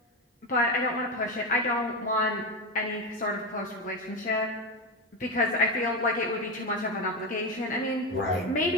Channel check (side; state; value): both; normal; correlation 0.14